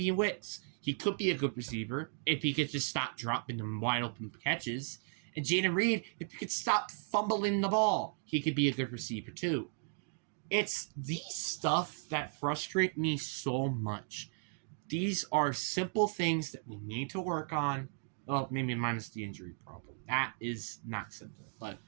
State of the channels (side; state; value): left; silent; 54 dB below the other